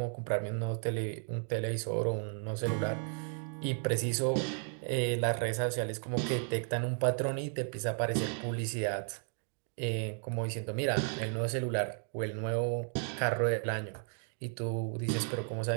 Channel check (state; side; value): silent; left; 55 dB below the other